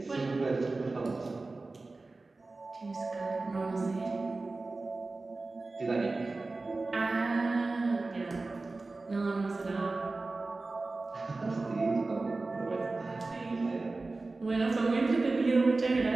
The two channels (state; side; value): quieter; left; 3.4 dB